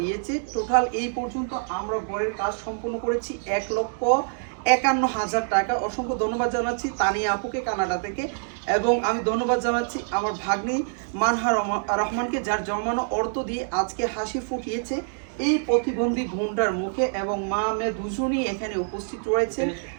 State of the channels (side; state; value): left; silent; digital silence